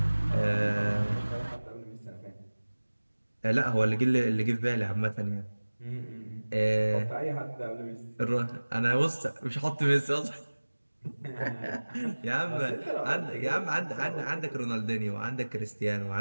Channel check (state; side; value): inverted; both; correlation -1.00